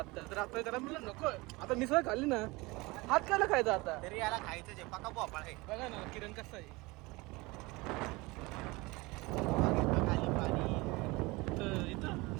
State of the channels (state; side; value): quieter; left; 23.3 dB